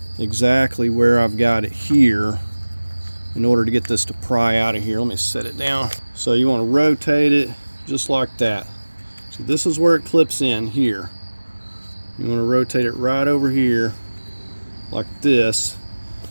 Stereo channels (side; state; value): both; inverted; correlation -1.00